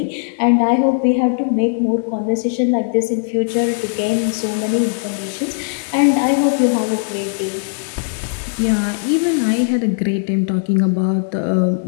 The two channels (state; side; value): silent; right; digital silence